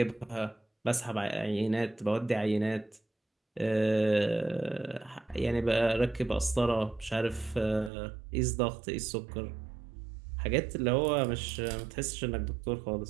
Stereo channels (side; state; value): left; drops out; at 7.9 s